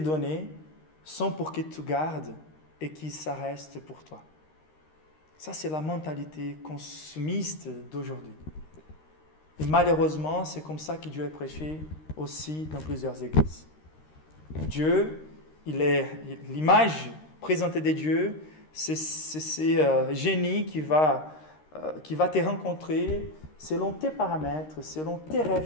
sont pour que tu gardes et que ça reste pour toi. » Ça, c'est la mentalité consumiste d'aujourd'hui. Et malheureusement, c'est comme ça que Dieu est prêché aussi dans plusieurs églises. Dieu, l'image présentée de Dieu, c'est ce génie qui va te rencontrer selon tes paramètres, selon tes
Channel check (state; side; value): late; right; 13 ms